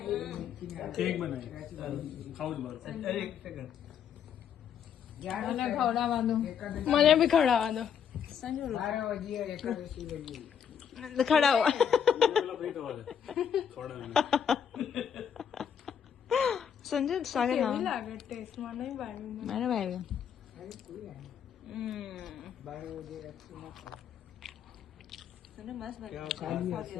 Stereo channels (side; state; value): right; quieter; 8.1 dB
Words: કેક બનાવી ખાવું જ મારું એક સેકન્ડ મને ખવડાવવાનું, મને બી ખવડાવવાનું. સંજુ ખવડાવો. સંજુ સાગે ના લાગે ટેસ્ટમાં નહીં ભાવ્યું મને ભાવ્યું.